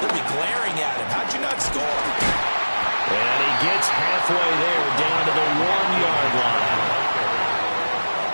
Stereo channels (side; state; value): both; inverted; correlation -1.00